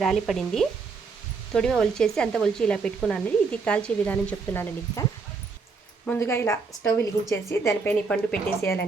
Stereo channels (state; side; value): quieter; left; 4.6 dB